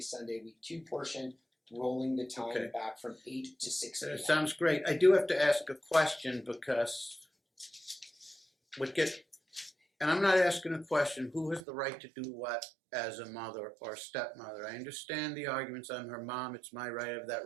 Sunday week 2 portion, rolling the time Okay. back from 8 to 6 p.m. That sounds great. I do have to ask a question because and I'm not asking a question, who has the right to do what as a mother or stepmother? I understand the arguments. I'm her mom. It's my right. I have that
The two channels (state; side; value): drops out; left; at 11.6 s